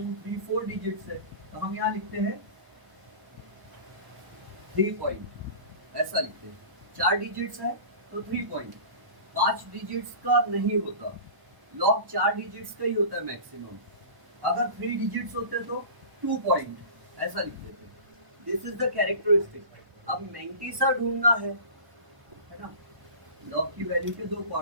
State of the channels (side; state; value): left; late; 1.0 ms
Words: 3 4 डिजिट्स है तो हम यहाँ लिखते हैं 3 पॉइंट, ऐसा लिखते हैं। 4 डिजिट्स है तो 3 पॉइंट। 5 डिजिट्स का नहीं होता, लॉग 4 डिजिट्स का ही होता है मैक्सिमम। अगर 3 डिजिट्स होते तो 2 पॉइंट, ऐसा लिखते थे। This is the characteristic. अब मैंटिसा ढूंढना है ना? लॉग की वैल्यू के 2